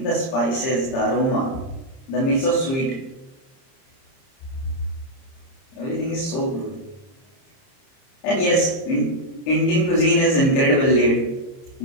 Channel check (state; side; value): late; right; 30 ms